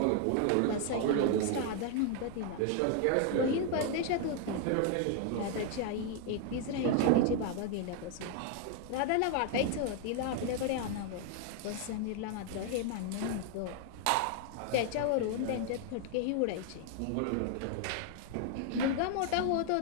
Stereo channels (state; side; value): different; both; correlation 0.00